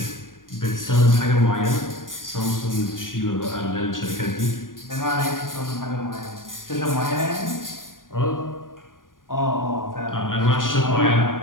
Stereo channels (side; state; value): right; late; 0.90 ms